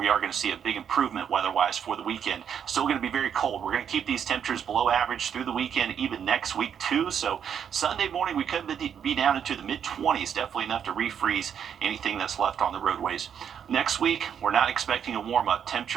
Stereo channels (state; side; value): quieter; left; 8.2 dB